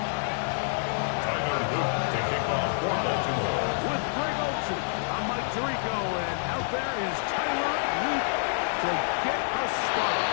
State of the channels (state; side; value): silent; right; digital silence